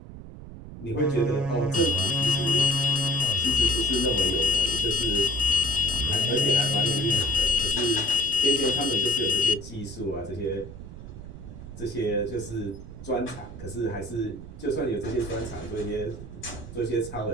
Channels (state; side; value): noise; right; rumble, 13 dB below the sound